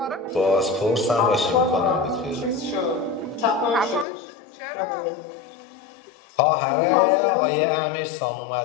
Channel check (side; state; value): right; drops out; at 4.0 s